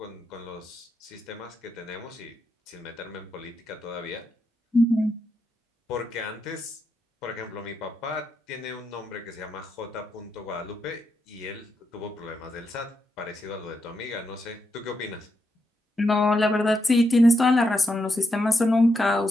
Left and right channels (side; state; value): both; normal; correlation 0.83